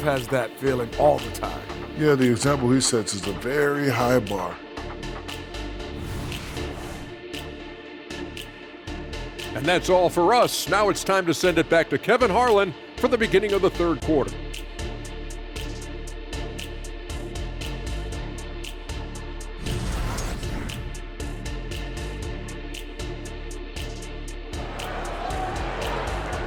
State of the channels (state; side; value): identical; both; correlation 1.00